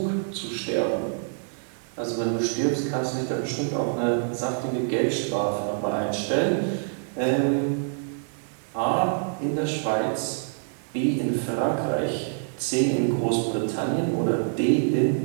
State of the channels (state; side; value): silent; left; digital silence